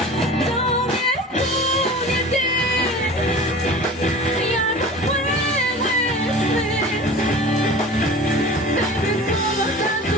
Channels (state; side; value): normal; both; correlation 0.38